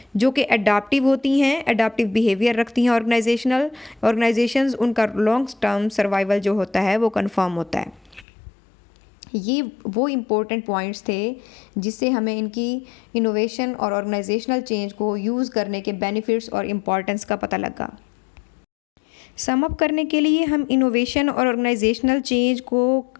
जो कि अडाप्टिव होती हैं, अडाप्टिव बिहेवियर रखती हैं ऑर्गेनाइजेशंस, उनका लॉन्ग टर्म सर्वाइवल जो होता है वो कंफर्म होता है। ये वो इम्पोर्टेंट पॉइंट्स थे जिससे हमें इनकी इनोवेशन और ऑर्गेनाइजेशनल चेंज को यूज़ करने के बेनिफिट्स और इम्पॉर्टेंस का पता लगा। सम अप करने के लिए हम इनोवेशन और ऑर्गेनाइजेशनल चेंज को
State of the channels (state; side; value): drops out; right; at 8.2 s